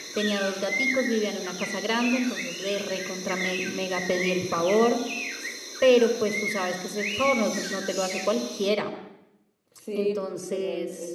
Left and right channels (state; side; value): identical; both; correlation 1.00